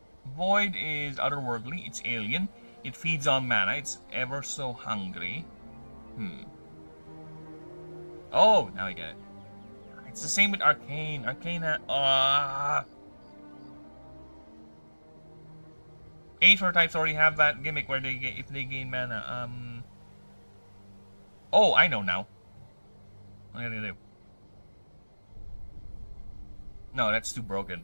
Void is otherworldly. It's alien. It feeds on mana. It's ever so hungry. Oh, now I get it. It's the same with Arcane. Arcana. Aether types already have that gimmick where they get if they gain mana. Oh, I know now. What am I gonna do? No, that's too broken.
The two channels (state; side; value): inverted; both; correlation -1.00